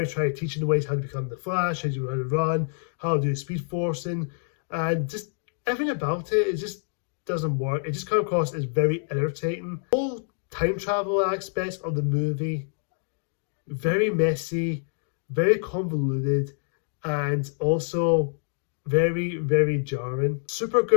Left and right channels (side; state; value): right; silent; digital silence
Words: trying to teach him the ways how to become the Flash, how to run, how to do speed forcing, and just everything about it just doesn't work. It just comes across as very irritating. All time travel aspects of the movie, very messy, very convoluted, and also very, very jarring.